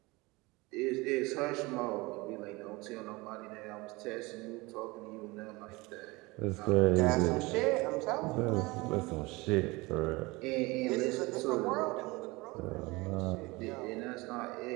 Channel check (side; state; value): left; quieter; 23.4 dB